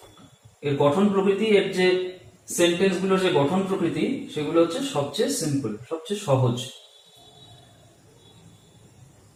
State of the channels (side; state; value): both; identical; correlation 1.00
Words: এর গঠন প্রকৃতি, এর যে সেন্টেন্স গুলোর যে গঠন প্রকৃতি, সেগুলো হচ্ছে সবচেয়ে সিম্পল, সবচেয়ে সহজ।